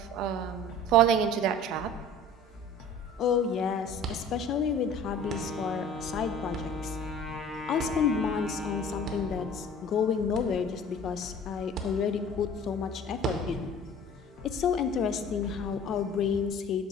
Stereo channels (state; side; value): normal; both; correlation 0.45